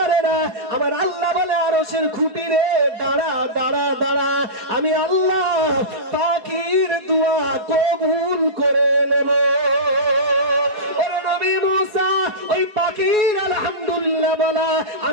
আমার আল্লাহ বলে আরশের খুঁটি রে দাঁড়া দাঁড়া দাঁড়া, আমি আল্লাহ পাখির দোয়া কবুল করে নেব। ওরে নবী মুসা, ওই পাখির আলহামদুলিল্লাহ বলা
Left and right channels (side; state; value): left; late; 4.7 ms